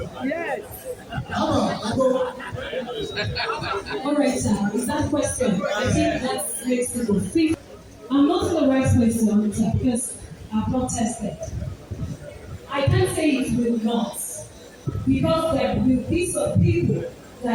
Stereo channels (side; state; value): both; identical; correlation 1.00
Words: Yes. How about agbo? All right, sir. Is that question? I think that makes it fit. I'm not in the right place to answer because I've not tested. I can't say it will not, because there will be some people